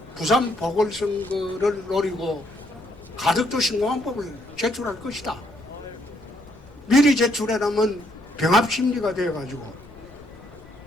부산 보궐선거를 노리고 가덕도 신공항법을 제출할 것이다. 미리 제출해라면 병합심리가 되어가지고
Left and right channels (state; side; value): noise; left; rumble, 24 dB below the sound